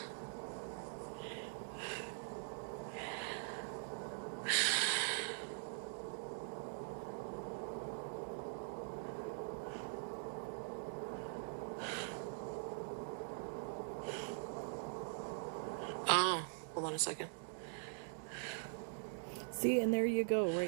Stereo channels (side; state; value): left; silent; digital silence